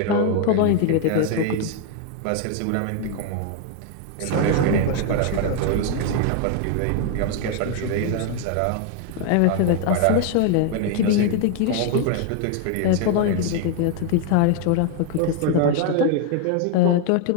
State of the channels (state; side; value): different; both; correlation 0.01